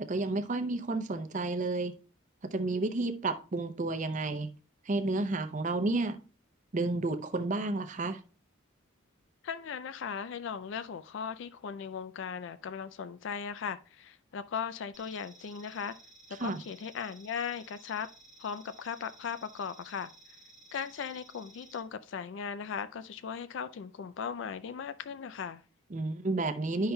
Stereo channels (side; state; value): both; normal; correlation 0.33